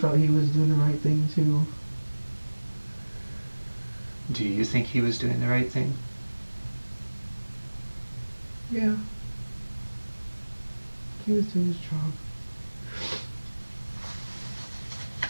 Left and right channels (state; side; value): inverted; both; correlation -1.00